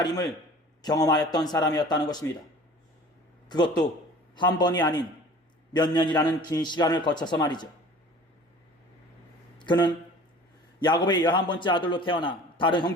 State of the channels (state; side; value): normal; both; correlation 0.44